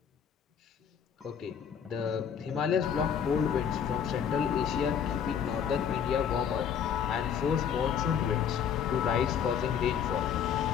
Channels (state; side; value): quieter; right; 8.0 dB